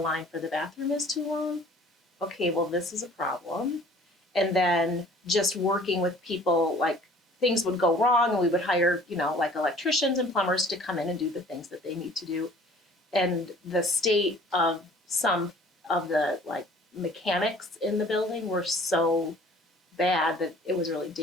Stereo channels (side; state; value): both; normal; correlation 0.51